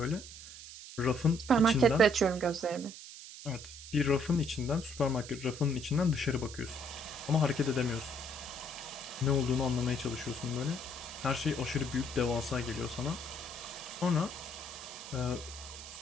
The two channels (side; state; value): right; noise; hiss, 14 dB below the sound